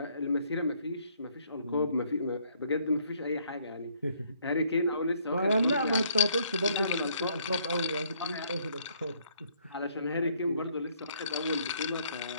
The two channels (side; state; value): both; inverted; correlation -0.67